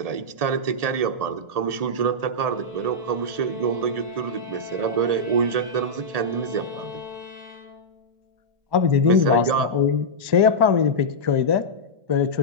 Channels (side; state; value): left; late; 1.8 ms